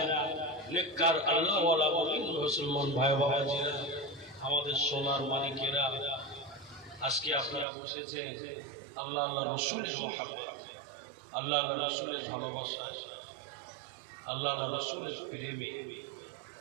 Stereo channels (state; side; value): drops out; left; at 7.7 s